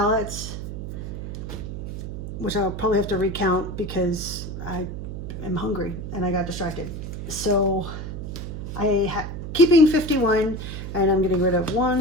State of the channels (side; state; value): right; noise; hum, 7 dB below the sound